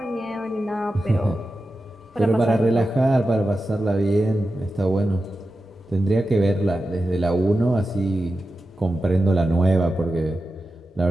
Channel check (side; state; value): both; normal; correlation 0.92